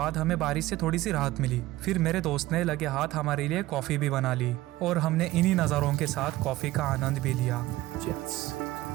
हमें बारिश से थोड़ी सी राहत मिली। फिर मेरे दोस्त ने लगे हाथ हमारे लिए कॉफ़ी भी बना ली और हमने इन्हीं नज़ारों के साथ कॉफ़ी का आनंद भी लिया।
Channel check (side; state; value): left; quieter; 17.1 dB